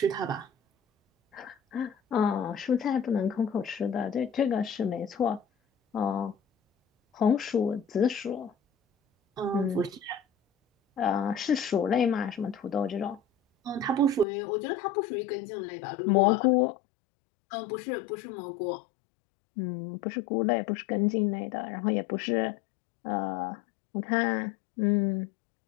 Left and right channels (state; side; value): drops out; right; at 14.2 s